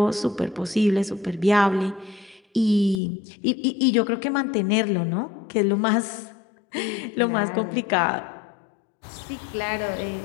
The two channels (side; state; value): right; drops out; at 3.0 s